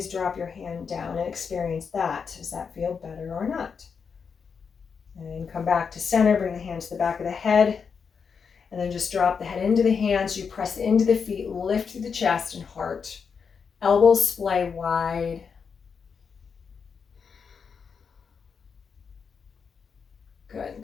drop your hand down and experience that. Does that feel better or not? And come back to center. Bring the hand to the back of the head. And then just drop the head into the hands. You press into the feet. Lift through the chest and heart. Elbows splay wide. Good.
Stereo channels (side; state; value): right; quieter; 6.0 dB